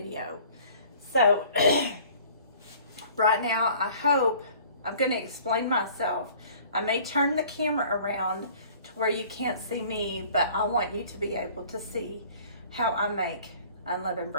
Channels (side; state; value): both; inverted; correlation -0.51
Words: So right now I'm going to explain myself. I may turn the camera around to where you can't see me, but I want you to be able to see how I make unleavened